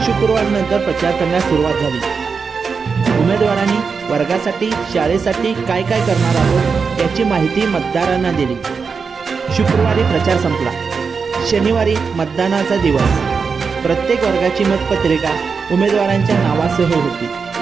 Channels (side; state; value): left; quieter; 5.4 dB